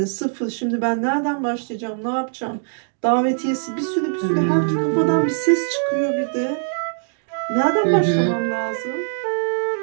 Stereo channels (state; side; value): silent; left; digital silence